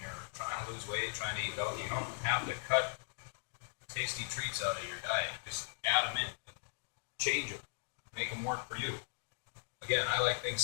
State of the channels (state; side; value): silent; right; digital silence